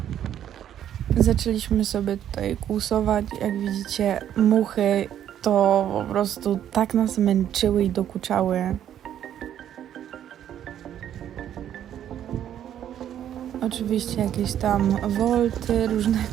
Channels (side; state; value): left; quieter; 10.5 dB